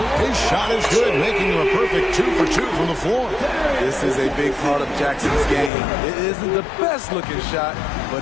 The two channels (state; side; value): drops out; right; at 5.7 s